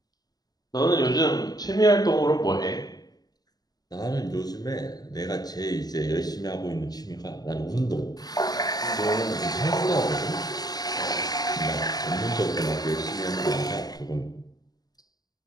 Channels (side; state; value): right; late; 0.19 ms